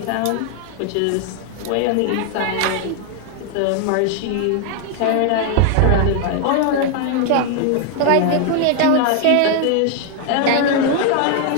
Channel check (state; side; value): different; both; correlation 0.00